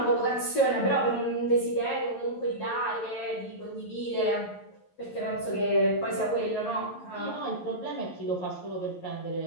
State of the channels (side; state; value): right; late; 11 ms